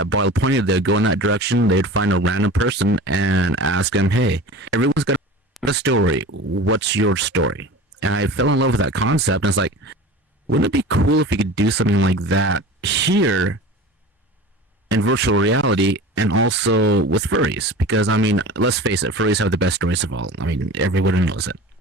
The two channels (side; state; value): both; normal; correlation 0.36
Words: bottle pointed, they'd go in that direction. They'd find a random person and ask them, hey, everyone's got a story. What's your story? And I fell in love with that concept. And it's like, wouldn't it be cool if we could do something like that here in virtual reality and also with furries? Because, I mean, let's face it, furries have the best stories of all. I mean, everybody knows it.